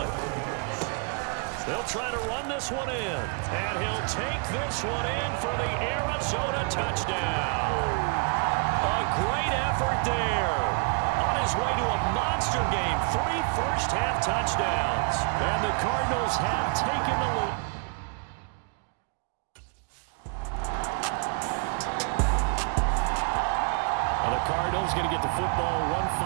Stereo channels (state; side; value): quieter; left; 36.8 dB